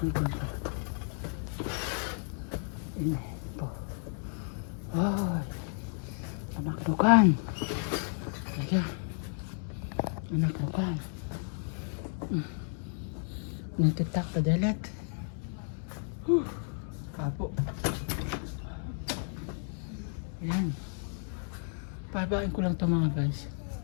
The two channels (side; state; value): right; silent; 56 dB below the other